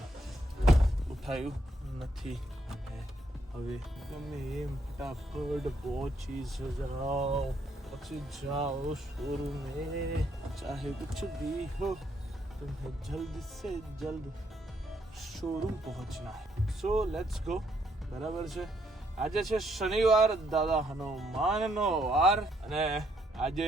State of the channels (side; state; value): both; normal; correlation 0.73